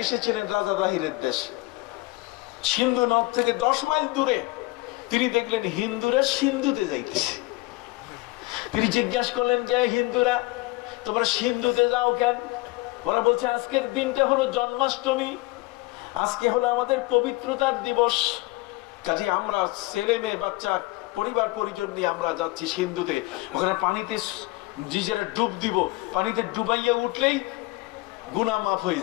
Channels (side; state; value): right; quieter; 21.8 dB